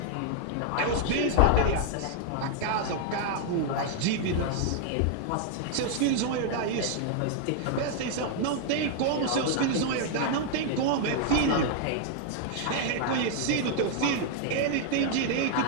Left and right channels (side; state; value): both; different; correlation 0.00